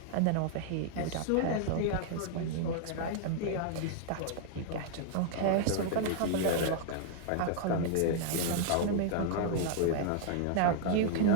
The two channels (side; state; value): both; different; correlation -0.01